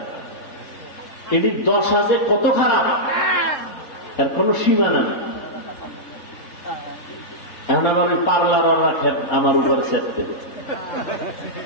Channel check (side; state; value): right; late; 3.7 ms